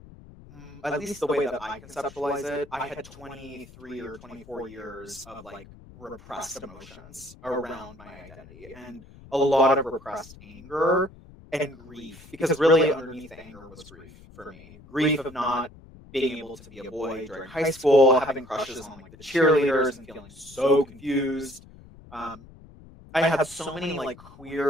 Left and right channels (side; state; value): left; noise; rumble, 21 dB below the sound